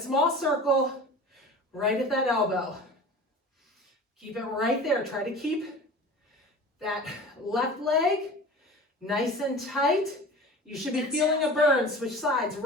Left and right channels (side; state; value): both; normal; correlation 0.37